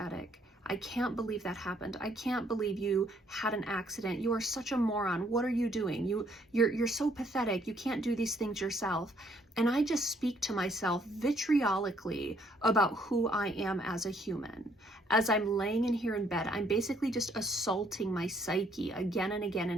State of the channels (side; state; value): both; normal; correlation 0.67